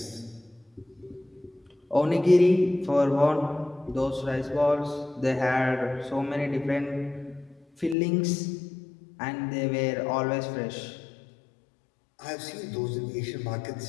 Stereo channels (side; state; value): right; drops out; at 8.0 s